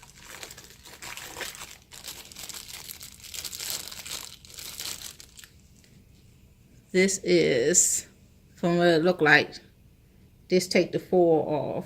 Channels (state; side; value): identical; both; correlation 1.00